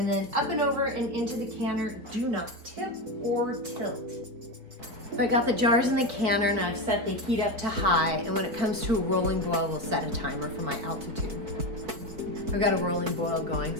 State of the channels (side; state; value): left; late; 4.5 ms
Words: then up and over and into the canner. Do not tip or tilt. So I got the jars in the canner and I've set the heat up to high, and when it comes to a rolling boil, we'll set a timer for my altitude. I've got a rolling boil going,